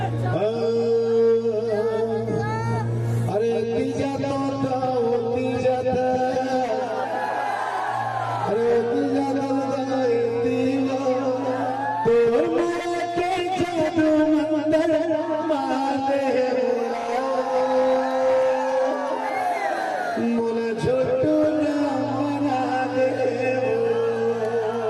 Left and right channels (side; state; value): both; identical; correlation 1.00